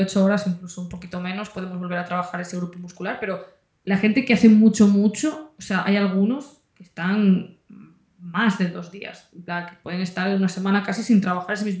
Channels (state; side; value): identical; both; correlation 1.00